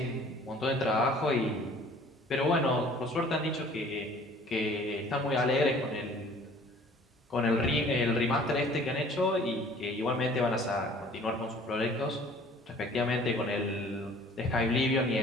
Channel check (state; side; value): normal; both; correlation 0.52